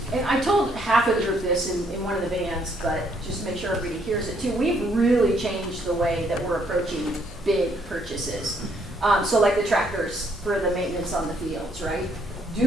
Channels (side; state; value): both; normal; correlation 0.69